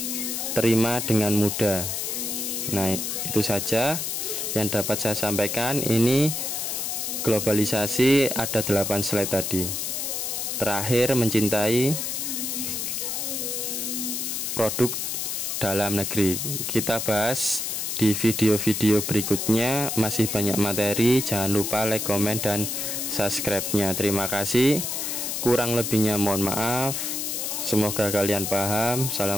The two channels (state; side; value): noise; left; hiss, 2 dB below the sound